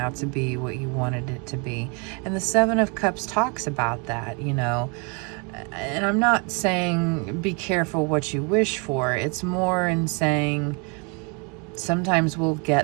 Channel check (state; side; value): quieter; left; 33.6 dB